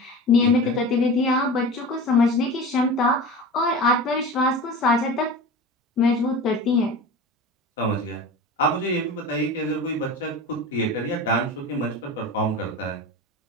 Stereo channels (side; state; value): both; normal; correlation 0.32